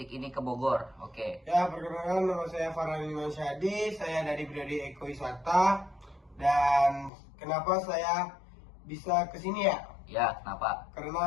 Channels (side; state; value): right; drops out; at 7.1 s